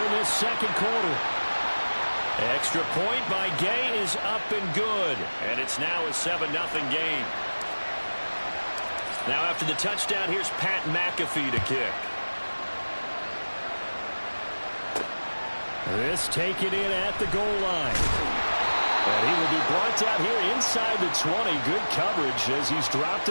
in this 2nd quarter. Extra point by Gay is up and good. And it's now a 7-0 game. Now after the touchdown, here's Pat McAfee to kick. This taken in at the goal line. And he will be brought down here inside the 20. Good coverage as he's dropped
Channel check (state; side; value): inverted; both; correlation -1.00